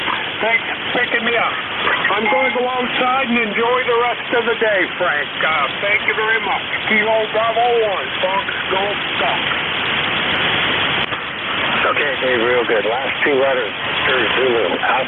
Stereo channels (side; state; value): both; identical; correlation 1.00